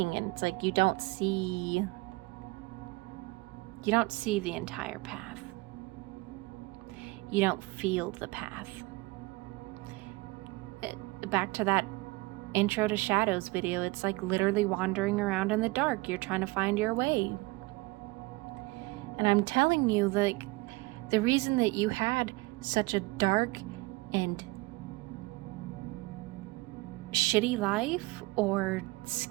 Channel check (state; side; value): quieter; left; 23.5 dB